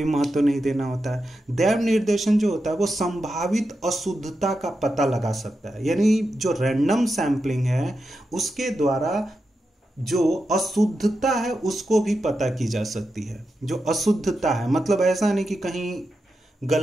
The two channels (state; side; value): normal; both; correlation 0.88